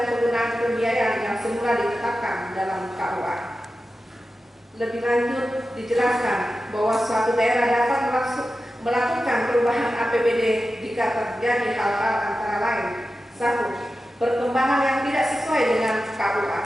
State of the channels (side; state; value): both; normal; correlation 0.93